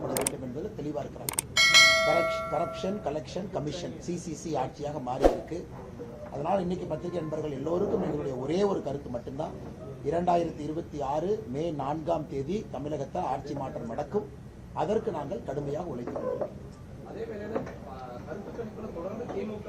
வேண்டும் என்பதில் தெளிவாக இருக்கிறார். கரப்ஷன் கலெக்ஷன் கமிஷன் சிசிசி ஆட்சியாக மாறி இருக்கு. அதனால் இன்னைக்கு பத்திரிகை நண்பர்கள் எல்லோருக்கும் எங்களுடைய ஒரே ஒரு கருத்து மட்டும்தான், 2026 மே 4ஆம் தேதி தமிழகத்தில் ஆட்சி மாற்றம் நடக்கும். அதற்கு நாங்கள் கடுமையாக உழைத்துக் கொண்டிருக்கிறோம். அதே வேளையில கருத்து கணிப்புல தொடர்ந்து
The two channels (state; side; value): identical; both; correlation 1.00